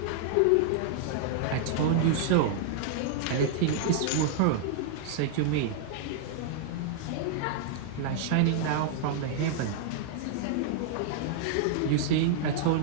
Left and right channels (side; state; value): both; different; correlation -0.01